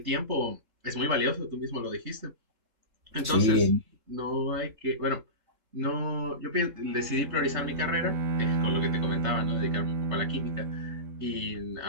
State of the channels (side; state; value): left; late; 3.7 ms